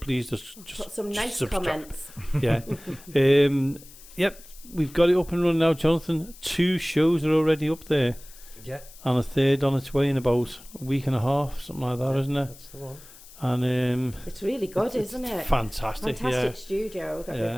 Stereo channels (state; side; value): noise; left; hiss, 20 dB below the sound